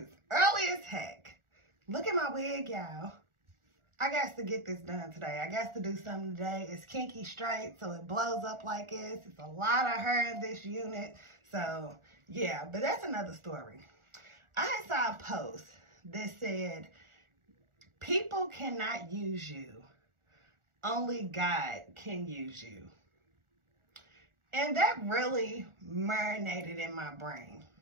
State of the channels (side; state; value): left; late; 1.4 ms